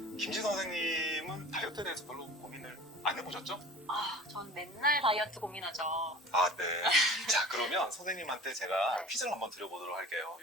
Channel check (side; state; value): both; normal; correlation 0.41